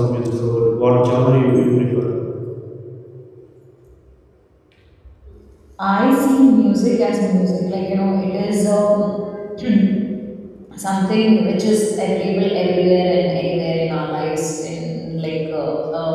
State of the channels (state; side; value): identical; both; correlation 1.00